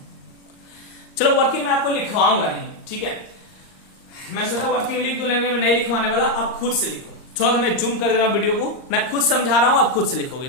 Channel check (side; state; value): right; late; 39 ms